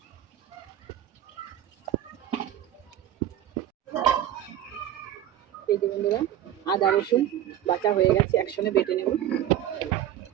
এই যে বন্ধুরা, আদা রসুন বাটা হয়ে গেছে, একসঙ্গে বেটে নেব।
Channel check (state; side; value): quieter; left; 11.6 dB